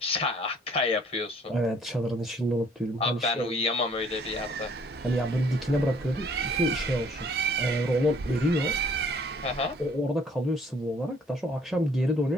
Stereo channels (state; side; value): normal; both; correlation 0.59